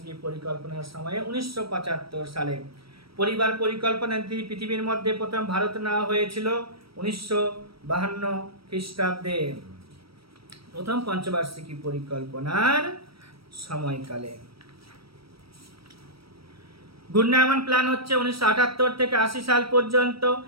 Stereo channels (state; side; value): late; left; 0.75 ms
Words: পরিকল্পনার সময়ে 1975 সালে। পরিবার পরিকল্পনা পৃথিবীর মধ্যে প্রথম ভারত নেওয়া হয়েছিল 1952 খ্রিস্টাব্দে, প্রথম পঞ্চবার্ষিকী পরিকল্পনার সময়কালে। ঘূর্ণায়মান প্ল্যান হচ্ছে 1978 থেকে 80 সাল পর্যন্ত।